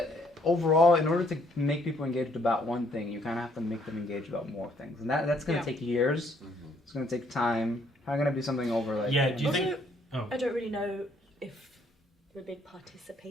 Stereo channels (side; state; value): both; normal; correlation 0.67